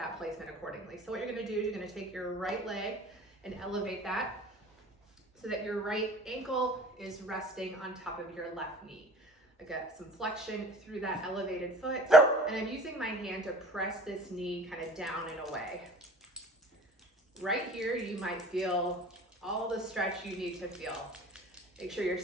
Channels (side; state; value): both; normal; correlation 0.45